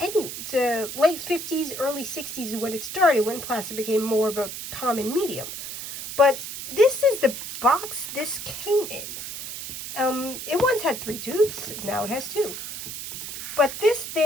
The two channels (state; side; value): noise; right; hiss, 8 dB below the sound